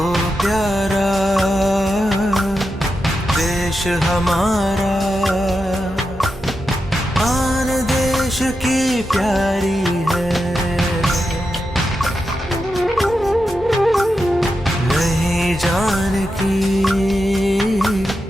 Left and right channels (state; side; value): normal; both; correlation 0.88